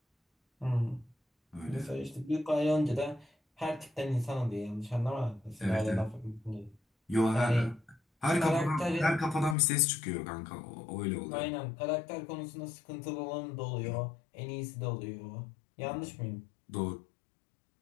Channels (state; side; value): drops out; right; at 9.6 s